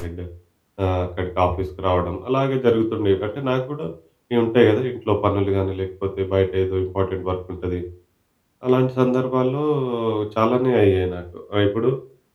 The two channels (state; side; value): identical; both; correlation 1.00